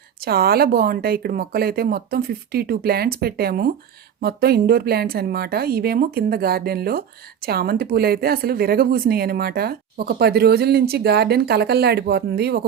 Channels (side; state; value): left; quieter; 8.5 dB